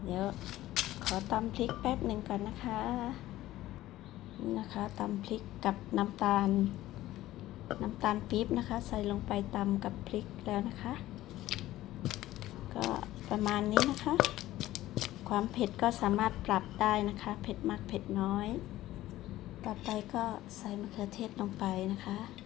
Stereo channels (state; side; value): quieter; right; 15.4 dB